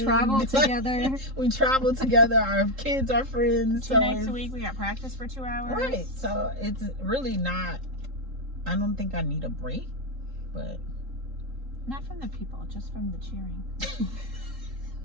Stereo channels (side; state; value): left; late; 3.7 ms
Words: together. We travel together. Our kids are friends. 2 nights a week, we got practice for 2 hours. Right. So it's really not, I don't think I need a break, but. Not from the people, just from the cheering.